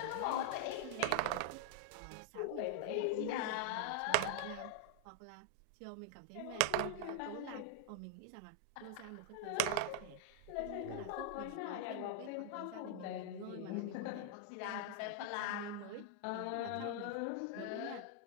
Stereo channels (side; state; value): both; different; correlation -0.01